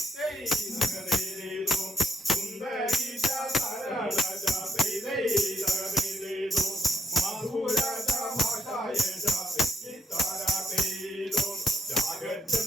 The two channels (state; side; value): normal; both; correlation 0.74